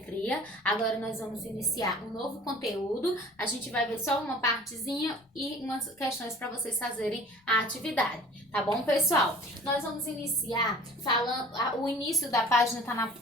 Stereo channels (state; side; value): normal; both; correlation 0.46